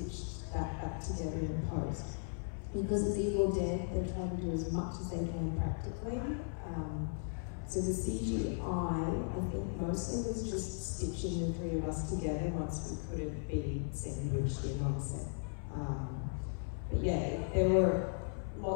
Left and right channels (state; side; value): silent; right; 53 dB below the other